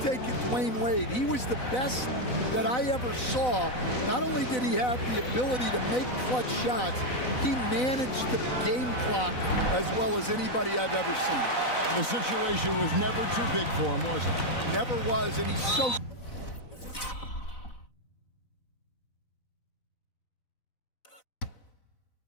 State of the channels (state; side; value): late; right; 4.0 ms